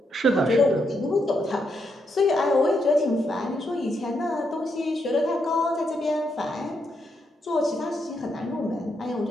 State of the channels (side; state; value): both; normal; correlation 0.79